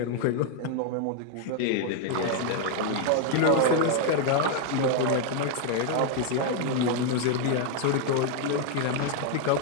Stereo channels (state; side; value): different; both; correlation 0.01